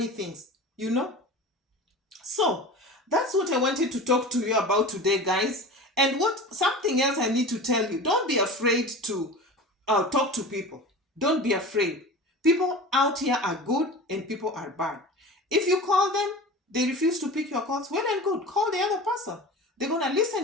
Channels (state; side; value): normal; both; correlation 0.34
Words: things, you know. So that's what I wanted to talk to you about today, guys. And something else I need to tell you. Don't be afraid to talk to people. Don't be afraid. People out here are good and people are bad. If you call them, they refuse to pick your calls, well and good. Call the other person. They're going to